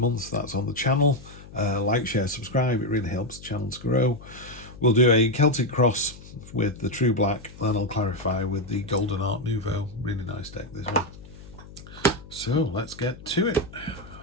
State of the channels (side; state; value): left; noise; hum, 18 dB below the sound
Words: That's on the channel. Like, share, subscribe. It really helps the channel to grow. We'll do a Celtic cross with the True Black, then I'll clarify with the Golden Art Nouveau. Really nice deck, this one. So let's get to it.